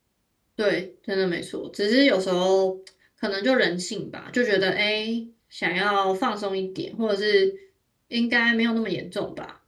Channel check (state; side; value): identical; both; correlation 1.00